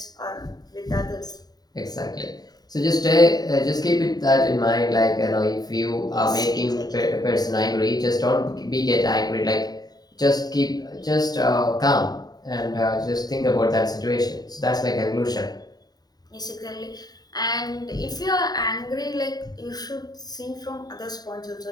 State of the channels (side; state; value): right; late; 0.19 ms